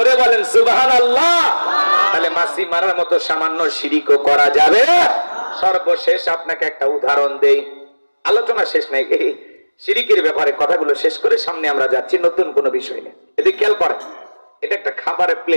বলেন সুবহানাল্লাহ। তাহলে মাছি মারার মতো সামান্য শিরকও করা যাবে। সর্বশেষ আপনাকে একটা উদাহরণ দেই, আলোচনা শেষ নাই, এই শিরকের ব্যাপারে কথাগুলো শেষ করে সামনে আমরা যাচ্ছি নতুন কোনো বিষয় নিয়ে। এদিকে খেয়াল করেন, এটা একটা খাবারের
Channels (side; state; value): both; inverted; correlation -1.00